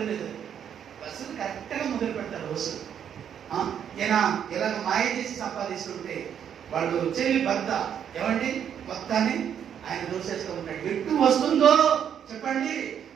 లేదు, వసూలు కరెక్ట్గా మొదలు పెడతారు వసూలు. ఈయన ఇలాగ మాయ చేసి సంపాదిస్తుంటే వాళ్ళు చెల్లి భర్త ఏమండి మొత్తాన్ని ఆయన దోసేస్తూ ఉంటాడు. ఎటు వస్తుందో చెప్పండి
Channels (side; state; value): left; quieter; 8.8 dB